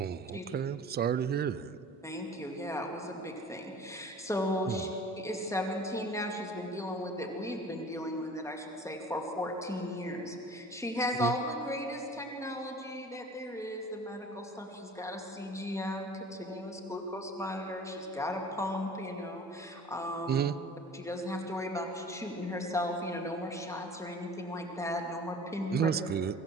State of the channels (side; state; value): both; normal; correlation 0.44